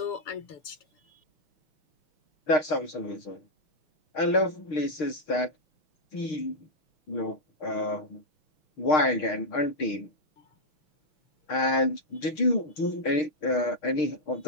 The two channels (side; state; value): right; late; 6.6 ms